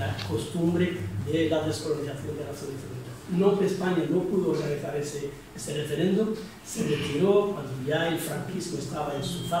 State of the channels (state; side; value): identical; both; correlation 1.00